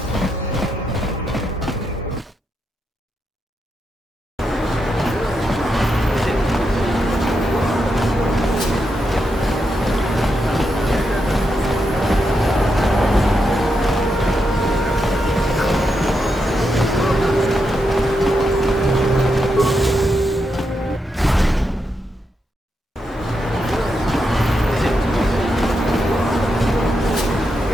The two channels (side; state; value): both; normal; correlation 0.84